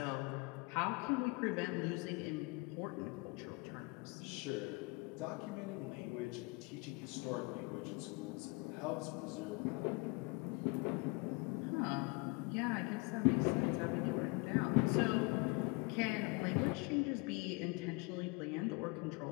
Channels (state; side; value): quieter; right; 27.9 dB